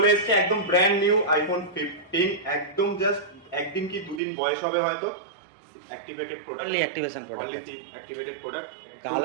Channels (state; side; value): drops out; left; at 4.2 s